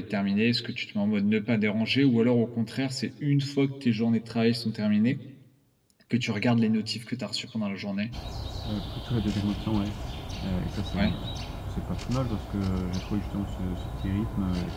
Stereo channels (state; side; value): identical; both; correlation 1.00